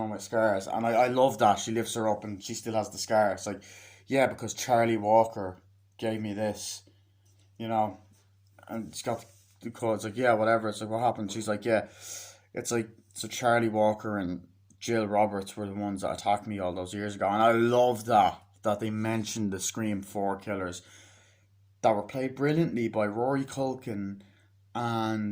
my scars. And I love that. She lifts her up and she still has the scar. It's like, yeah, because Charlie Walker gave me this, you know. And it's got the code. It's like, yeah, whatever. It's like, what happened? She's like, yeah. It's like, so Charlie Walker and Jill Roberts were the ones that attacked me all those years ago. And I love that they mentioned the Scream 4 killers that were played brilliantly by Rory Culkin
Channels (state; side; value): identical; both; correlation 1.00